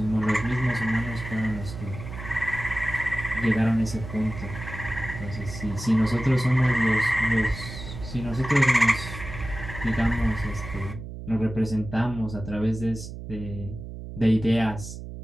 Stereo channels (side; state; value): right; noise; hum, 10 dB below the sound